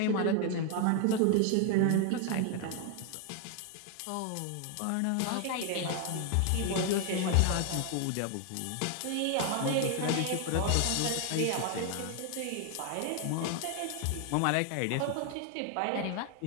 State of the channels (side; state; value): both; different; correlation 0.00